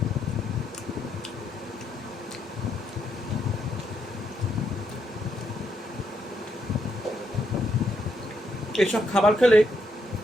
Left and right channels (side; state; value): both; normal; correlation 0.77